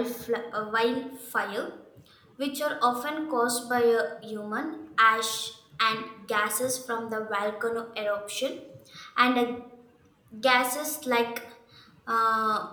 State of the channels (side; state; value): both; identical; correlation 1.00